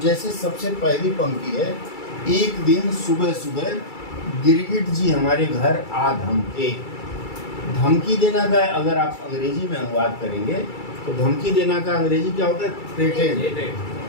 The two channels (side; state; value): right; late; 2.3 ms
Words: सबसे पहली पंक्ति है, एक दिन सुबह सुबह गिरगिट जी हमारे घर आ धमके। धमकी देना का अगर आप अंग्रेजी में अनुवाद करेंगे तो धमकी देना का अंग्रेजी क्या होता है?